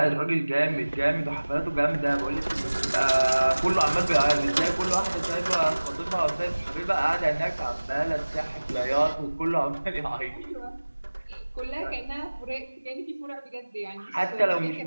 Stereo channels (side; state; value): both; inverted; correlation -1.00